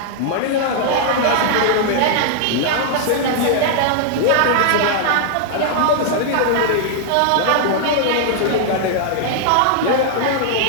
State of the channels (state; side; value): different; both; correlation -0.01